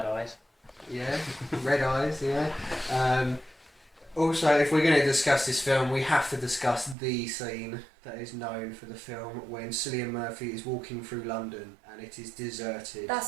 eyes. Yeah, red eyes. Yeah. Also, if we're going to discuss this film, we have to discuss the scene that is known for the film when Cillian Murphy is walking through London and it is deserted.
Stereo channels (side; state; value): left; drops out; at 7.0 s